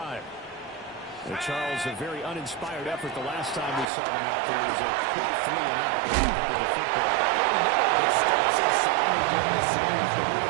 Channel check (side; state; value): left; drops out; at 3.9 s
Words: Charles, a very uninspired effort the last time we saw them out there. It was a quick 3-and-out with the football. It starts so soundly during the series, but